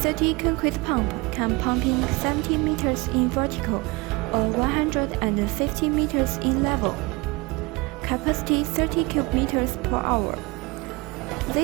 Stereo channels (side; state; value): left; quieter; 25.4 dB